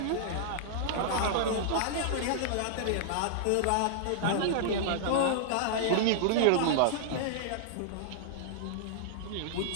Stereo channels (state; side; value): different; both; correlation -0.01